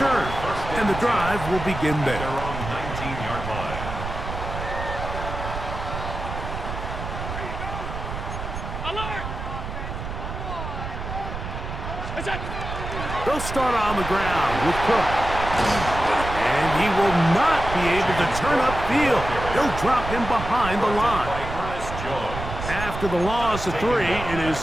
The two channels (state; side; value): noise; right; rumble, 7 dB below the sound